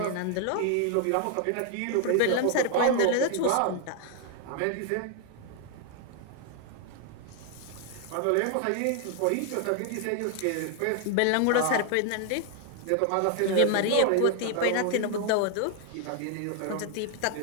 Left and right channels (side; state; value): both; different; correlation 0.00